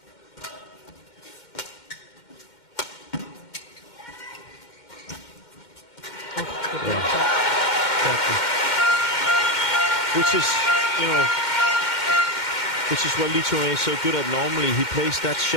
Which is, you know, which is what Lee Chong Wei is so good at normally. He plays that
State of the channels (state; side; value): late; right; 2.1 ms